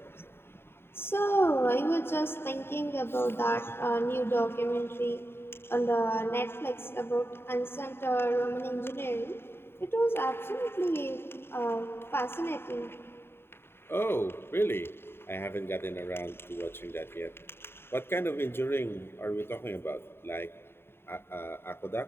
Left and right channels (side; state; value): right; late; 0.11 ms